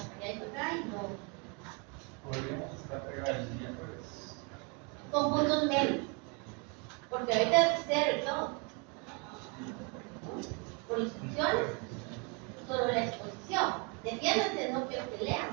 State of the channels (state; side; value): quieter; left; 33.3 dB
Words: allá y para acá, y no. podríamos estar pegados el miércoles. Con puntos medios. Porque ahorita es cero y todo. Por instrucciones, solo la exposición. Defiéndanse, no quiero que